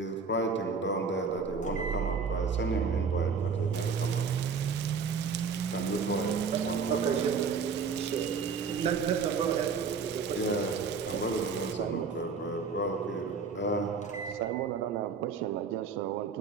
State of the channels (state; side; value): quieter; left; 5.3 dB